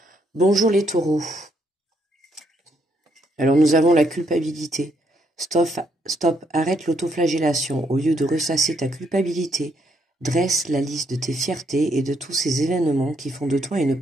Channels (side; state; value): both; normal; correlation 0.73